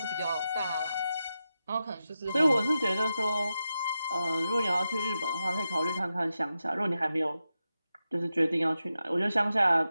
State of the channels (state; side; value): inverted; both; correlation -0.89